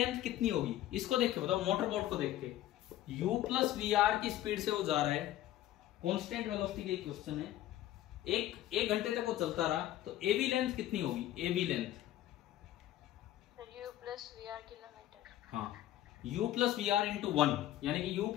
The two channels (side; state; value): right; quieter; 13.6 dB